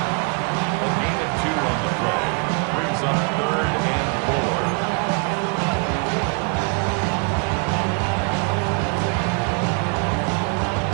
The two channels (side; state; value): left; quieter; 34.0 dB